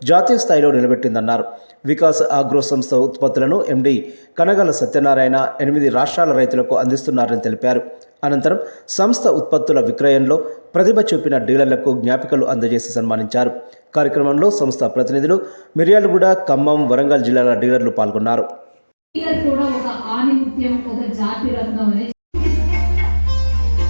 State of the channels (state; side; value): inverted; both; correlation -1.00